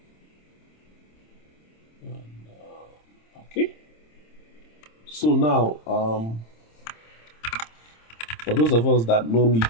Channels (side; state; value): right; late; 26 ms